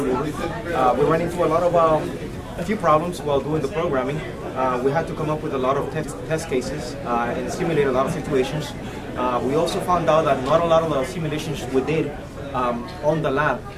We ran into a few problems while doing the programming. We had to come up with a lot of test cases and simulate a lot of situations. We also found out that not a lot of the simulations we did on the lab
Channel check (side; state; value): both; identical; correlation 1.00